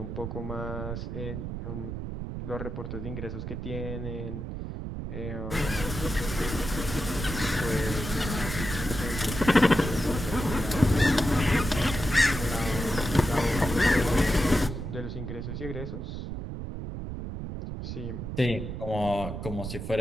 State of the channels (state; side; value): noise; right; rumble, 6 dB below the sound